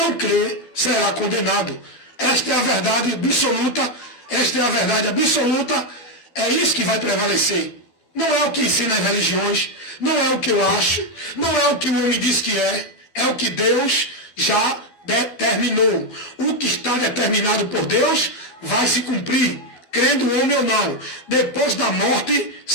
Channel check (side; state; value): right; late; 12 ms